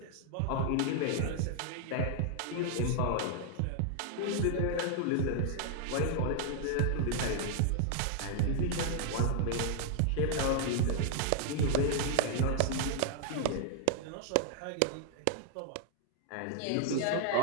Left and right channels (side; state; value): both; different; correlation 0.00